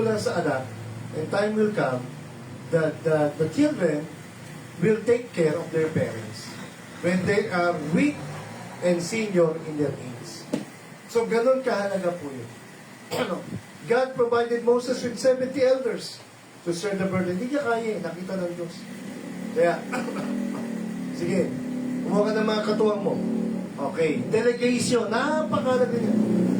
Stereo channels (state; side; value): identical; both; correlation 1.00